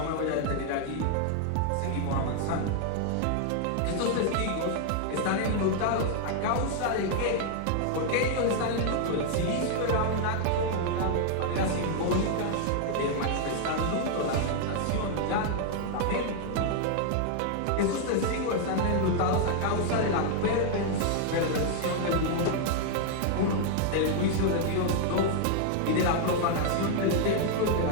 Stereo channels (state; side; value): different; both; correlation 0.00